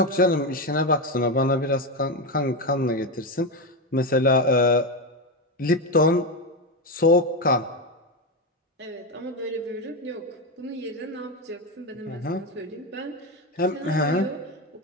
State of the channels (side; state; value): both; normal; correlation 0.13